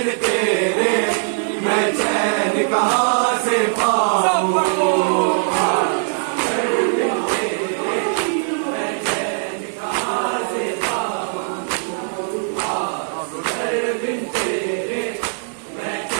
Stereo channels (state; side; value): silent; left; digital silence